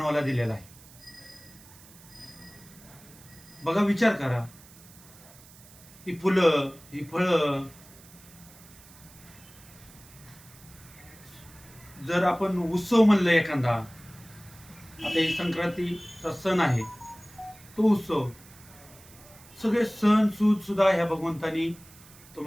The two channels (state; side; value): noise; right; hiss, 22 dB below the sound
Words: दिलेलं आहे. बघा, विचार करा. ही फुलं, ही फळं, जर आपण उत्सव म्हणलं एखादा, आता ही संक्रांतीचा सण आहे, तो उत्सव, सगळे सण सूद सुद्धा ह्या भगवंतानी